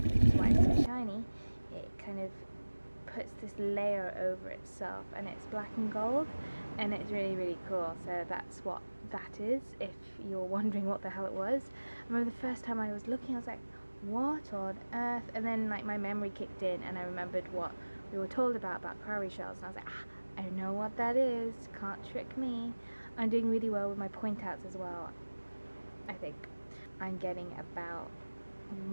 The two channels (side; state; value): both; inverted; correlation -1.00